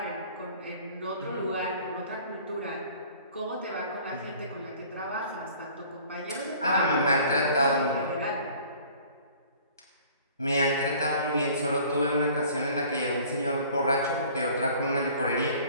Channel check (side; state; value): both; inverted; correlation -0.51